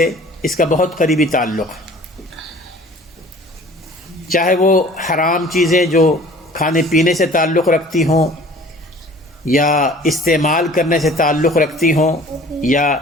اس کا بہت قریبی تعلق ہے۔ چاہے وہ حرام چیزیں جو کھانے پینے سے تعلق رکھتی ہوں، یا استعمال کرنے سے تعلق رکھتی ہوں، یا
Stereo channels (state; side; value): normal; both; correlation 0.48